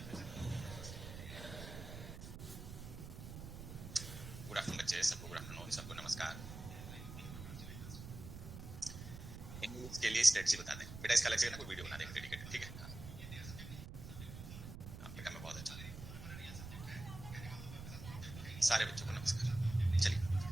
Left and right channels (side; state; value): right; noise; rumble, 10 dB below the sound